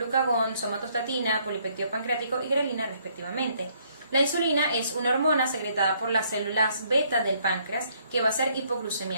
somatostatina, polipéptido pancreático y grelina respectivamente. La insulina es una hormona secretada por las células beta del páncreas que va a ser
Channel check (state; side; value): inverted; both; correlation -0.67